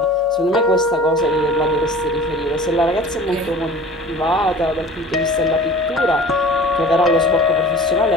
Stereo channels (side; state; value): both; normal; correlation 0.43